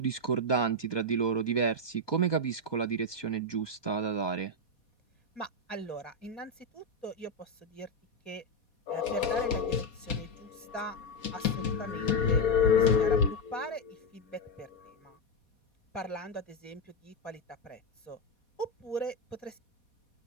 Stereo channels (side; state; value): right; late; 4.2 ms